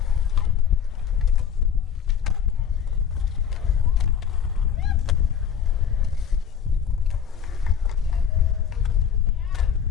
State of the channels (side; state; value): right; quieter; 7.9 dB